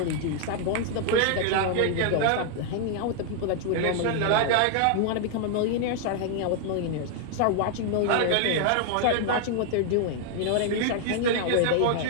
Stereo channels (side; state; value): both; different; correlation 0.00